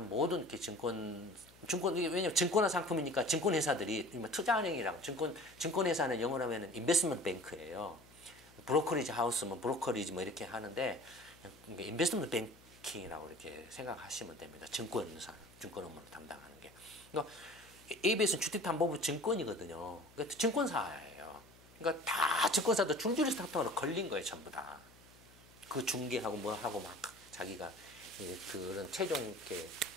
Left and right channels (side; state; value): left; noise; hum, 25 dB below the sound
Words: 모든 이렇게 왜냐면 증권화 상품이니까 증권회사들이 투자은행이랑 증권회사는 영어로 하면 인베스트먼트 뱅크예요. 브로커리지 하우스면 브로커리지 뭐 이렇게 하는데 인베스트먼트 뱅킹이라고 이렇게 생각하시면 됩니다. 증권 업무를 담당하는 게. 그러니까 ABS는 주택담보부 증권이거든요. 그러니까 증권사예요. 그러니까 다 증권사도 줄줄이 스타트업으로 걸린 거예요, 전부 다. 그 중개하고 뭐 하고 막 자기가 그런 최종 이렇게